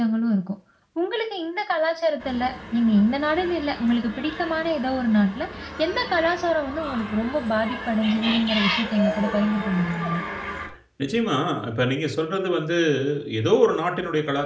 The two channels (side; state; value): both; identical; correlation 1.00